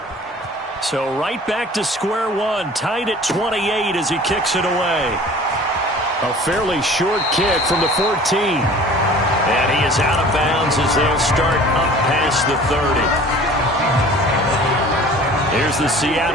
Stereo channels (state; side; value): normal; both; correlation 0.46